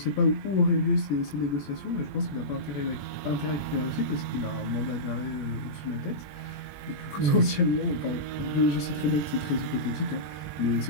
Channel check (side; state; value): right; late; 21 ms